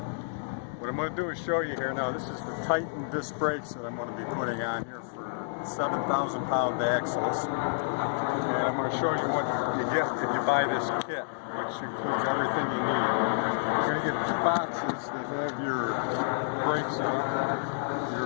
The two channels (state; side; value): silent; right; digital silence